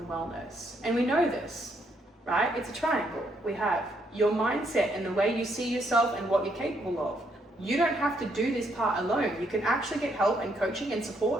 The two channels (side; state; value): both; normal; correlation 0.74